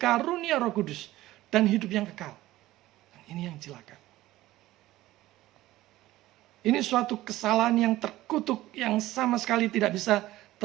Roh Kudus dan hidup yang kekal. Dan ini yang celaka. Ini suatu kesalahan yang terkutuk yang sama sekali tidak bisa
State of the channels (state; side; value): quieter; left; 16.3 dB